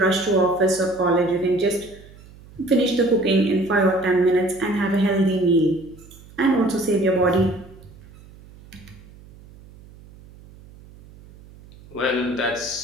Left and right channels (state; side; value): noise; right; hum, 22 dB below the sound